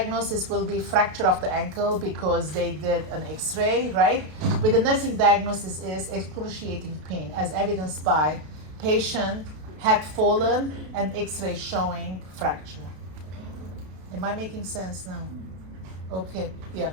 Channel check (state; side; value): late; left; 32 ms